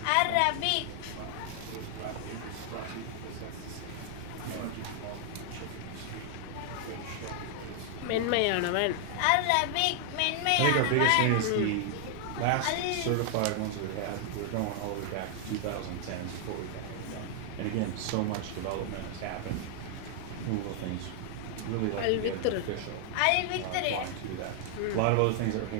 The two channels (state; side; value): different; both; correlation 0.00